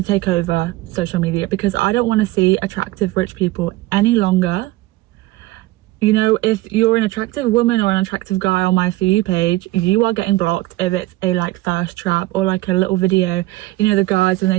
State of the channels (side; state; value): left; quieter; 18.4 dB